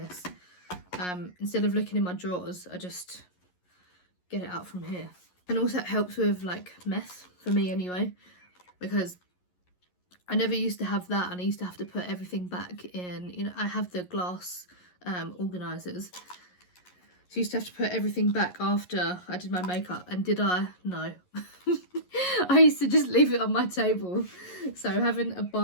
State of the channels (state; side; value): late; right; 11 ms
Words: instead of looking in my drawers, I just get it out from here. And also it helps with like mess, for me anyway, because I never used to have that, and I used to have to put everything back in, you know, I have the glass organisers, so I used to have to put everything back after I did my makeup. And did I? No. I used to just leave it on my table. So having a